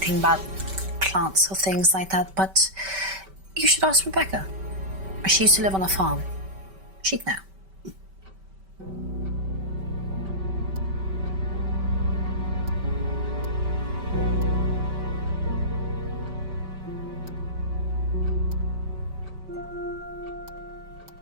about plants or things like that, but you should ask Rebecca. She used to live on a farm. She'd know.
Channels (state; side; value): late; left; 5.2 ms